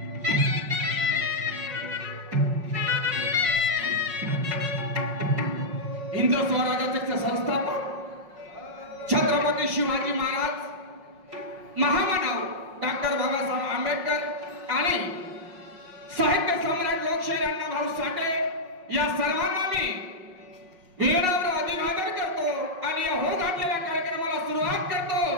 हिंदू स्वराज्याचे संस्थापक छत्रपती शिवाजी महाराज, महामानव डॉक्टर बाबासाहेब आंबेडकर आणि साहित्य सम्राट लोकशाहीर अण्णाभाऊ साठे या सर्वांना मी वीरावर अभिवादन करतो आणि या हो घातलेल्या कार्यक्रमाला सुरुवात करतो।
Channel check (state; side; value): late; left; 5.4 ms